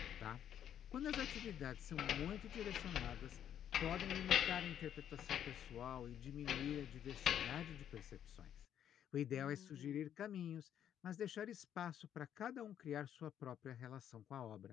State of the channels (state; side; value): quieter; right; 9.8 dB